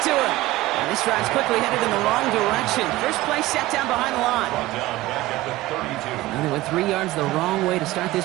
to him. And this drive's quickly headed in the wrong direction. First play set down behind the line. Brought down back at the 32. And they went 3 yards the wrong way to start this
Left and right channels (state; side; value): quieter; left; 17.5 dB